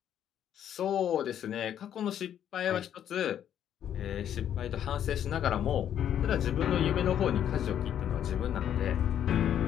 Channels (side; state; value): right; quieter; 10.0 dB